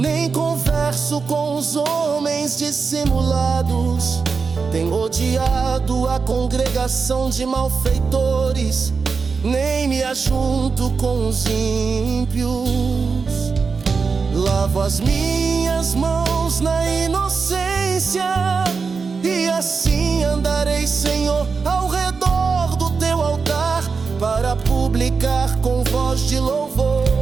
converso com os homens dissimulados. Tenho odiado a congregação de malfeitores, nem me ajunto com os ímpios. Lavo as minhas mãos na inocência, e assim andarei, Senhor, ao redor do teu altar, para publicar com voz de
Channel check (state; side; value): quieter; left; 5.0 dB